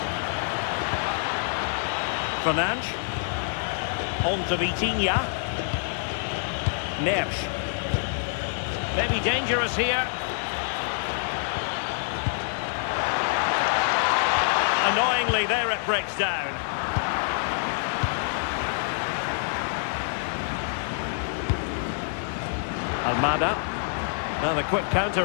Fernandes. On to Vitinha. Neves. Maybe dangerous here. Annoyingly, there it breaks down. Almada. Now the quick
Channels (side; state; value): right; silent; digital silence